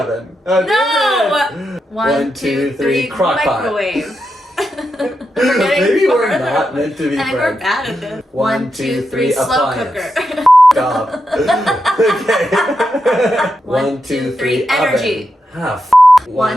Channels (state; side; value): normal; both; correlation 0.86